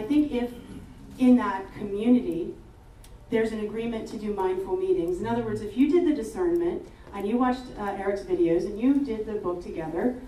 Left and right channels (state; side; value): identical; both; correlation 1.00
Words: think if in that community, there's an agreement to do mindful meetings. In other words, if you did the discernment and you watched Erik's videos and you did the book together,